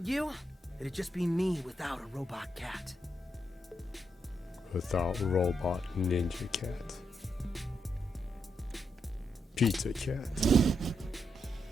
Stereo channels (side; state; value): both; normal; correlation 0.81